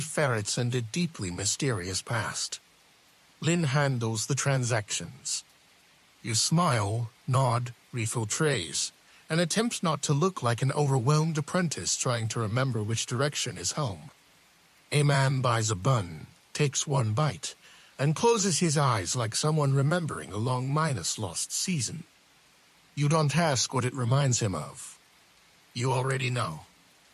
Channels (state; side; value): identical; both; correlation 1.00